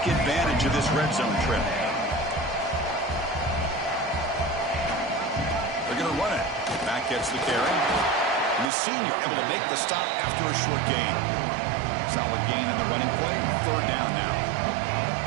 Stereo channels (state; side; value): drops out; left; at 8.7 s